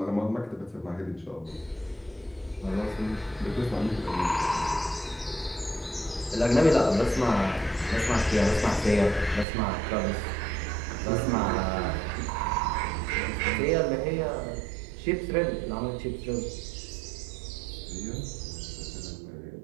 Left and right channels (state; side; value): drops out; left; at 9.5 s